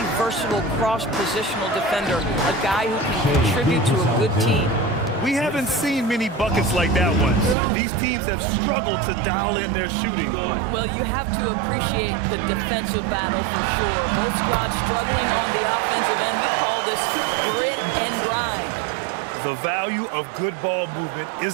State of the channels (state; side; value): drops out; left; at 7.6 s